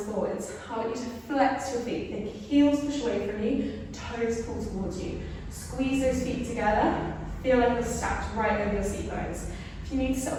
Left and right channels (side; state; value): both; identical; correlation 1.00